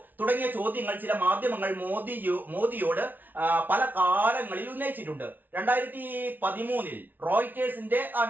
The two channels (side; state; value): left; late; 0.085 ms